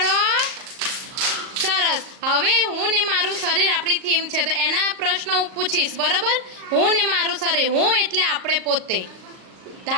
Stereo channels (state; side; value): late; left; 38 ms